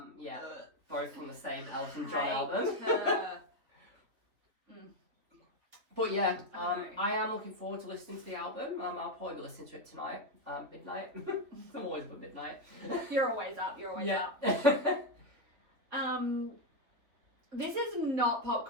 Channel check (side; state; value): left; late; 3.4 ms